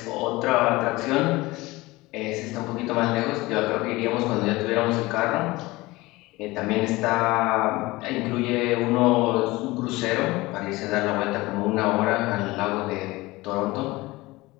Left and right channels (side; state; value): right; quieter; 20.7 dB